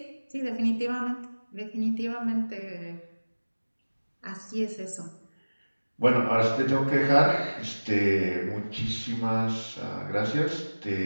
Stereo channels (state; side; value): inverted; both; correlation -1.00